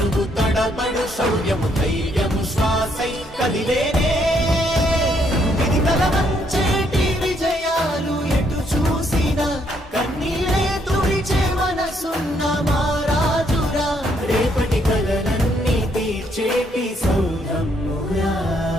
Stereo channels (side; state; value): both; normal; correlation 0.71